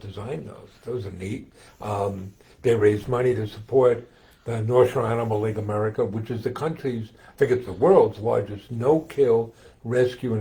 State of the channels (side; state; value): both; identical; correlation 1.00